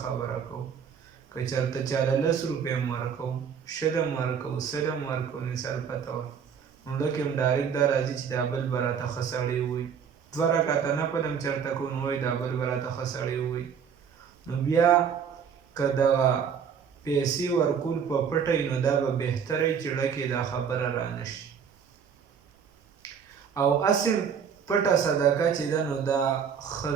خبره کوو. که چېرته چاله 10 روپۍ هم ورکوو، 20 هم ورکوو، 100 هم ورکوو، مثال پته وه، نو لکه هم ډایرکټ دا راځي چې دا بل به راته ښه سړی ووایي. 2 رکعته نفل هم چېرته کوو، نو وایي دا بل به راته ښه سړی ووایي. نو بیا که دغه پیسې ورکول په پټه وي، نو دا به بهتره وي چې ړکې دا خبره رانه شي. او اصل پټه صدقه چې ده، نو دا ښه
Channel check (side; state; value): left; quieter; 7.2 dB